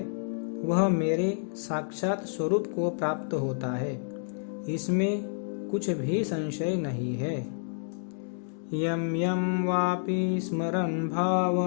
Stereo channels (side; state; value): right; silent; digital silence